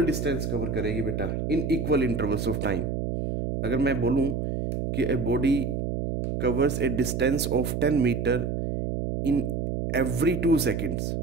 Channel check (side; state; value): right; noise; hum, 2 dB below the sound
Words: distance cover करेगी बेटा इन equal intervals of time. अगर मैं बोलूँ कि a body covers a distance of 10 meter in every 2 seconds,